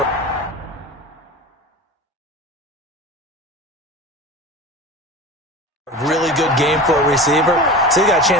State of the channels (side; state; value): both; normal; correlation 0.32